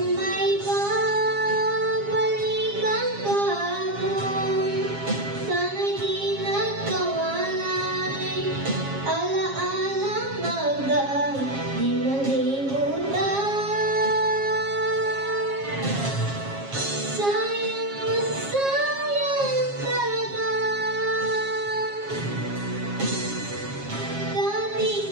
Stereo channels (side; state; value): left; late; 7.4 ms